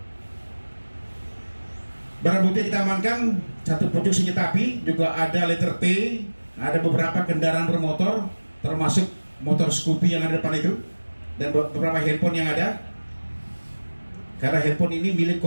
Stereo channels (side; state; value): both; inverted; correlation -1.00